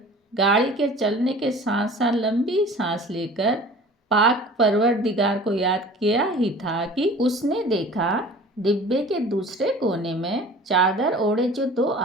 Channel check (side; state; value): both; normal; correlation 0.44